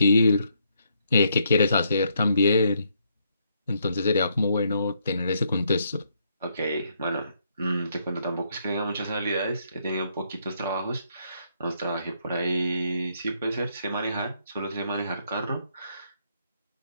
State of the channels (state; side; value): inverted; both; correlation -0.73